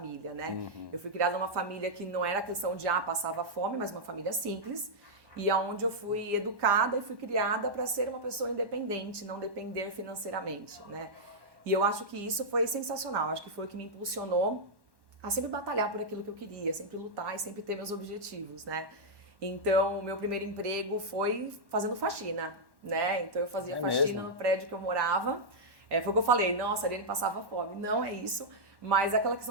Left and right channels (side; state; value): left; late; 1.1 ms